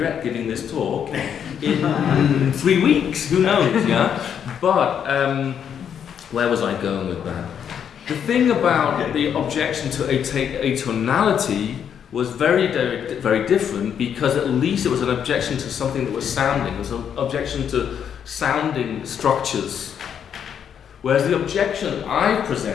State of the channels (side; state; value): right; quieter; 8.3 dB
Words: giving this talk in 3 weeks, who knows, yeah? But where was I going with that? The thing about the objection to atonality was very, very, very different, because at least it was an objection to something that was sounding. It was an objection to sounding structures. Whereas the objection I